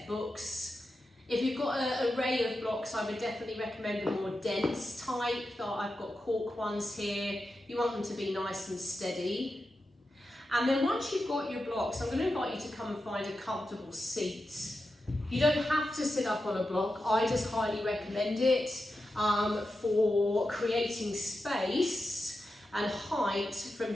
books. If you've got an array of blocks, I would definitely recommend the more dense type. I've got cork ones here. You want them to be nice and steady. And then once you've got your blocks, I'm going to invite you to come and find a comfortable seat. You don't have to sit up on a block. I just highly recommend it for creating space and height from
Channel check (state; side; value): normal; both; correlation 0.90